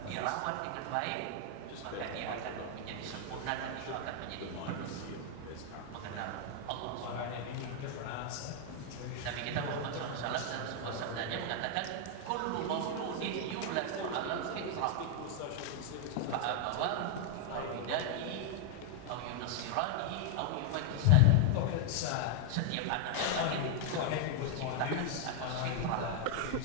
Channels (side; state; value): both; different; correlation 0.00